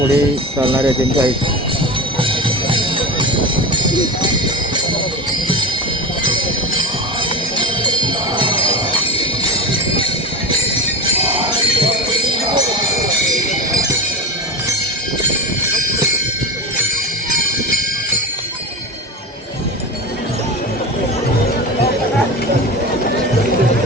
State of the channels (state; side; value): normal; both; correlation 0.25